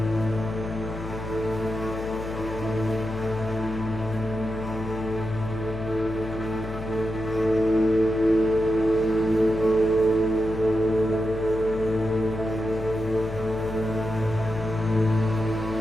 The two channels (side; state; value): left; noise; hum, 9 dB below the sound